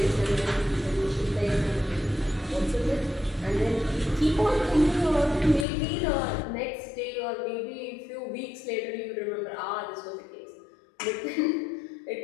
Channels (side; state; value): right; drops out; at 5.7 s